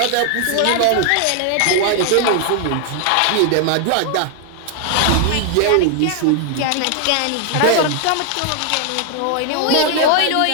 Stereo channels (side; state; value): both; different; correlation 0.00